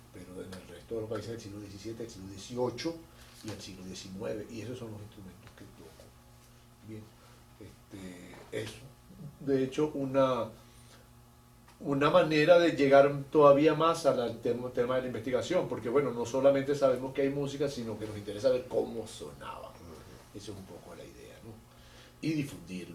pero en el resto de los países del siglo XVII, el siglo XVIII y el siglo XIX, y esos son los instrumentos que toco. Bien, es de hecho una manera de llegar todavía más al tema de la investigación, porque bueno, no solamente sabemos que hay música, sino que nos interesa ver cómo sonaba. Esa es un poco la idea, ¿no? Y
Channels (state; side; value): identical; both; correlation 1.00